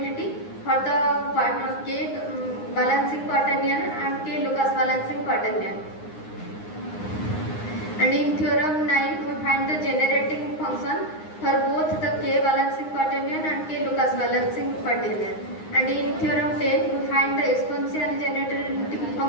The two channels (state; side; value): late; right; 9.7 ms